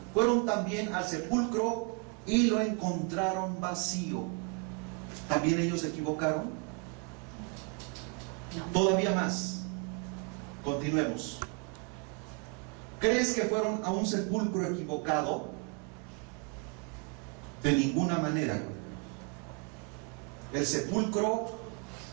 fueron también al sepulcro y lo encontraron vacío. ¿También ellos se equivocaron? No. Todavía más. Continuemos. ¿Crees que fueron a un sepulcro equivocado? De ninguna manera. El sepulcro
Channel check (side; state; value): left; quieter; 34.3 dB